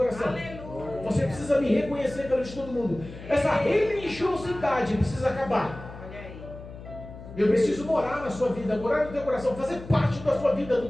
Aleluia. Você precisa me reconhecer perante todo mundo. Essa religiosidade precisa acabar. Olha aí. Eu preciso morar na sua vida, morar no teu coração, fazer parte da sua vida, do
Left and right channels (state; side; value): noise; left; hum, 14 dB below the sound